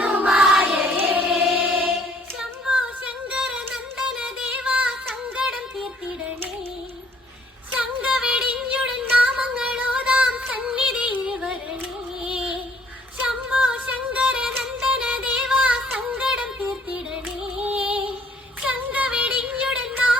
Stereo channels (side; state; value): both; normal; correlation 0.62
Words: ശംഭോ ശങ്കര നന്ദന ദേവാ സങ്കടം തീർത്തിടണേ. ശങ്ക വെടിഞ്ഞുടൻ നാമങ്ങളോതാം സന്നിധിയിൽ വരണേ. ശംഭോ ശങ്കര നന്ദന ദേവാ സങ്കടം തീർത്തിടണേ. ശങ്ക വെടിഞ്ഞുടൻ